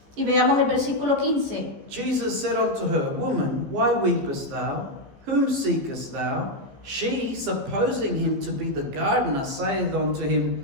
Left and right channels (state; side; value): late; left; 15 ms